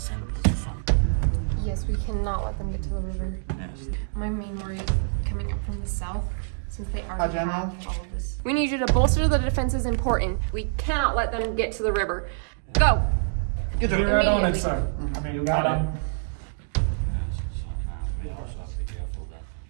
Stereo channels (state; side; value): silent; left; digital silence